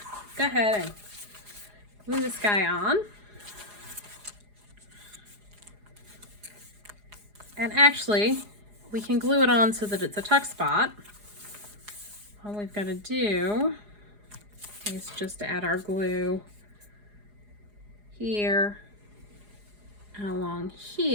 go ahead and glue this guy on. And actually, we can glue it on so that it's a tuck spot. All we've got to do is just add our glue here and along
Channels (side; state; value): left; late; 4.8 ms